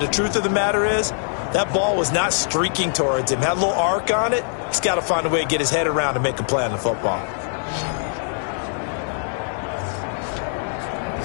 the truth of the matter is, that ball was not streaking towards him. Had a little arc on it. He's got to find a way to get his head around and make a play on the football.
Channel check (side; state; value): right; silent; 64 dB below the other